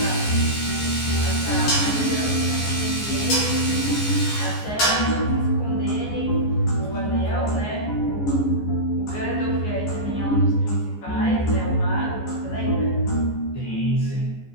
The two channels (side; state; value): right; late; 14 ms